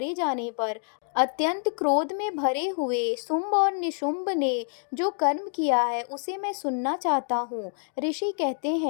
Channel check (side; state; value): right; silent; 60 dB below the other